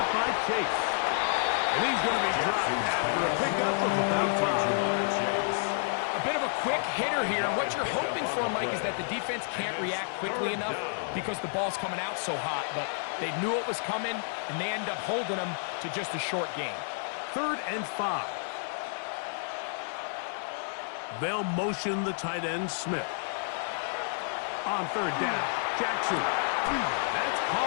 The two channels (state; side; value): silent; right; 58 dB below the other